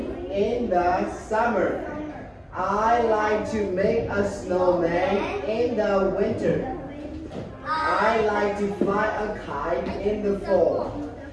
in the summer. I like to make a snowman in the winter. I like to fly a kite in the fall.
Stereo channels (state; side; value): identical; both; correlation 1.00